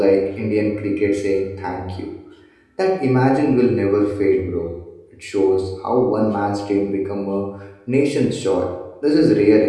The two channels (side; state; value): both; identical; correlation 1.00